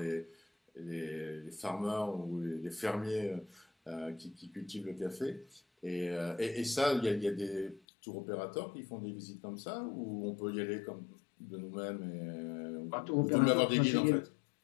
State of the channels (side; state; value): right; drops out; at 7.8 s